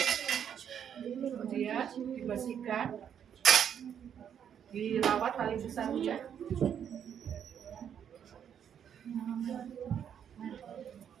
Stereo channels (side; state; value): left; quieter; 8.7 dB